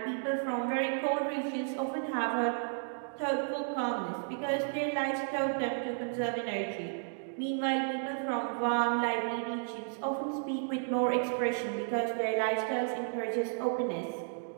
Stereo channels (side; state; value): left; silent; digital silence